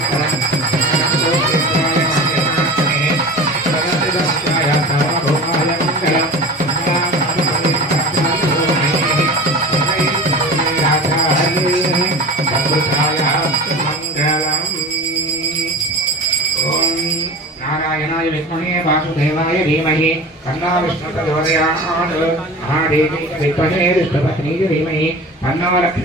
नारायणाय विद्महे वासुदेवाय धीमहि तन्नो विष्णुः प्रचोदयात् महादेवी विद्महे विष्णुपत्नीः धीमहि तन्नो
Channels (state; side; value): normal; both; correlation 0.36